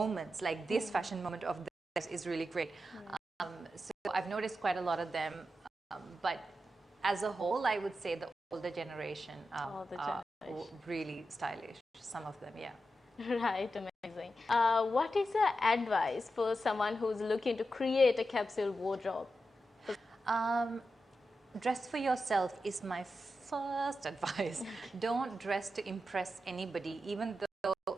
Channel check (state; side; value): normal; both; correlation 0.89